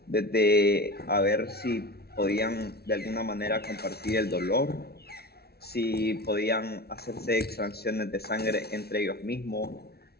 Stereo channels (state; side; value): late; right; 0.46 ms